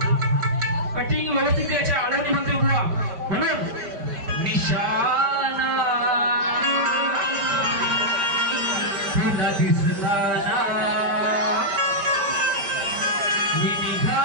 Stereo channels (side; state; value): left; late; 5.1 ms